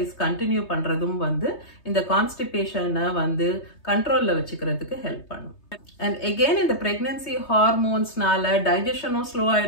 கண்டினியூ பண்றதும் வந்து இந்த கான்ஸ்டிபேஷனை வந்து கண்ட்ரோல்ல வச்சுக்கிறதுக்கு ஹெல்ப் பண்ணும். அண்ட் எகெயின் இந்த பிரெக்னன்சி ஹார்மோன்ஸ்னால டைஜஷனும் ஸ்லோ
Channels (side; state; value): right; late; 3.2 ms